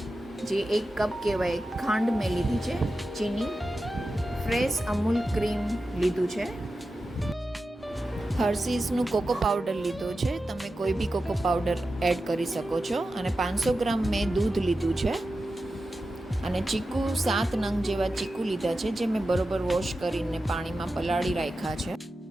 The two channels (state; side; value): normal; both; correlation 0.92